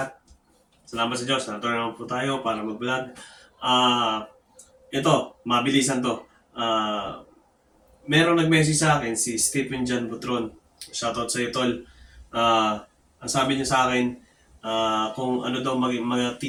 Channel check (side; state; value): both; identical; correlation 1.00